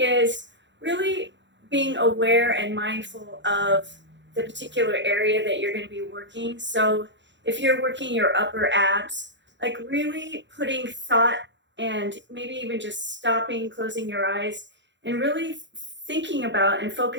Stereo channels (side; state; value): left; late; 0.53 ms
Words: really being aware and mindful of the particular area that you're going to be working. So if you're working your upper abs, like really putting thought and maybe even just stopping, closing your eyes, and really thinking about and